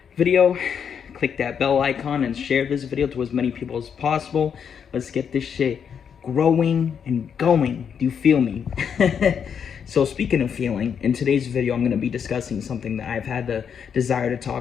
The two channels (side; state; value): right; quieter; 7.4 dB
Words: video, click that bell icon, and share this video to as many people as possible. Let's get this shit growing and going. Do you feel me? So speaking of feeling, in today's video, I'm going to be discussing something that I've had the desire to